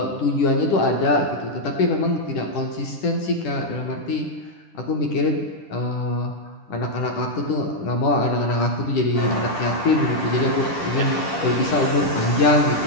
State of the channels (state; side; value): late; right; 10 ms